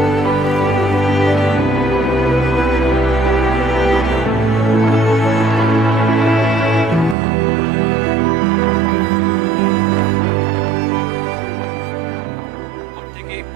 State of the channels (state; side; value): drops out; left; at 7.2 s